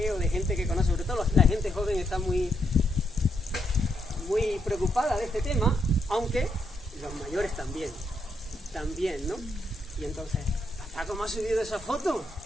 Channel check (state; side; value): normal; both; correlation 0.79